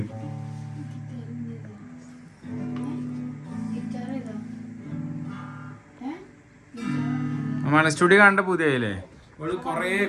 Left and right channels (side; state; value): both; identical; correlation 1.00